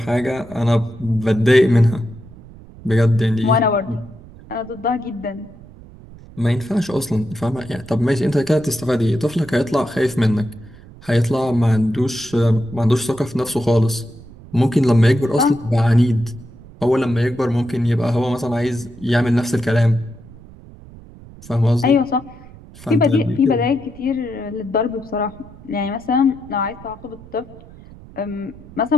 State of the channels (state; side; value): noise; right; rumble, 20 dB below the sound